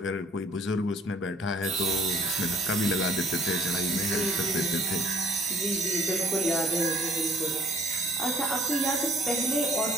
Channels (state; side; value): normal; both; correlation 0.56